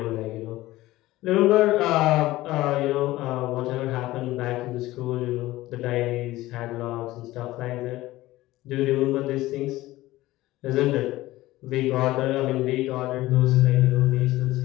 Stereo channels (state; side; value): quieter; right; 17.2 dB